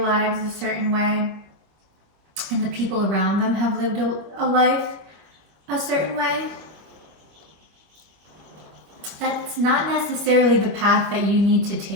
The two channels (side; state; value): left; late; 25 ms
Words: a certain way and the people around them have lived a life a certain way. That's not necessarily the path that you need to